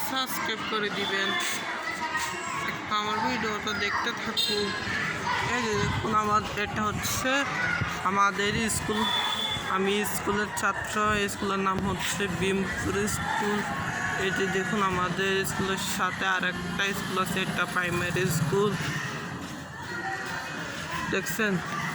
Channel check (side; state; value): both; identical; correlation 1.00